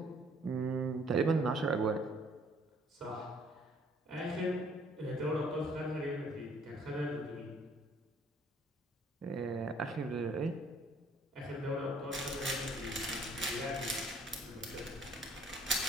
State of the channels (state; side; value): normal; both; correlation 0.60